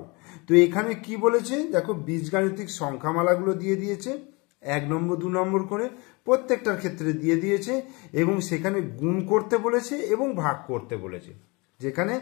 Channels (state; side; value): quieter; right; 27.5 dB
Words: তো এখানে কি বলেছে দেখো, বীজগাণিতিক সংখ্যামালাগুলো দিয়ে দিয়েছে 1 নম্বর 2 নম্বর করে, প্রত্যেকটার ক্ষেত্রে দিয়ে দিয়েছে এবং সেখানে গুণ করতে বলেছে এবং ভাগ করতে বলেছে, যেখানে